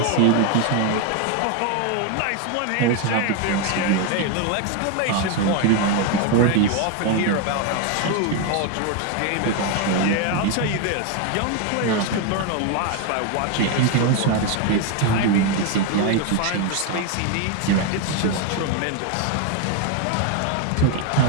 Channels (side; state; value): both; different; correlation 0.01